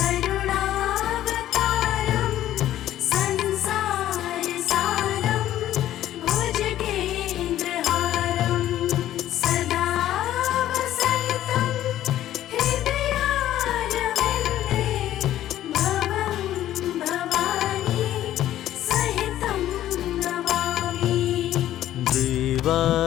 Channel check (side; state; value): right; quieter; 12.9 dB